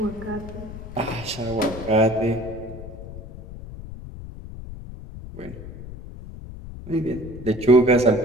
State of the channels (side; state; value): left; noise; rumble, 12 dB below the sound